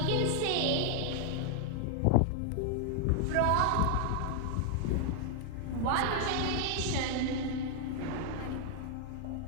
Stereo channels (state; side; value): different; both; correlation 0.00